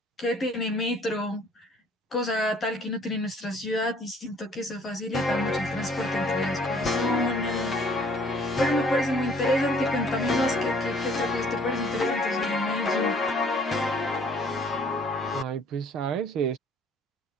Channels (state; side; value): normal; both; correlation 0.57